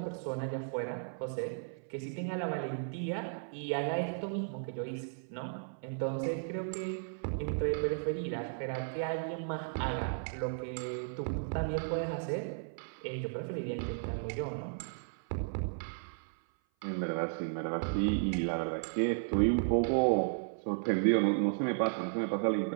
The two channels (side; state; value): left; silent; 55 dB below the other